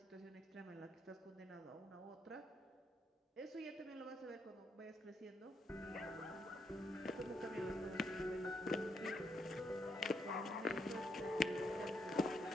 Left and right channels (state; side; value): normal; both; correlation 0.77